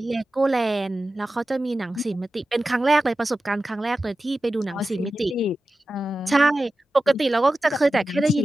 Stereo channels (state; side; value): normal; both; correlation 0.94